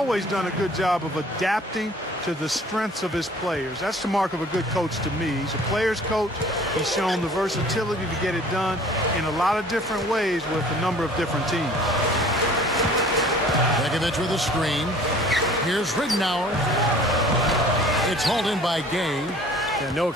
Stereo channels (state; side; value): normal; both; correlation 0.50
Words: done a good job of adapting to the strengths of his players. That's the mark of a good coach to me. He's a player's coach. He's shown the versatility to get it done in a lot of different ways with a number of different teams. Begovic with a screen. Here's Ridenour. It's hauled in by Gay. Yeah, no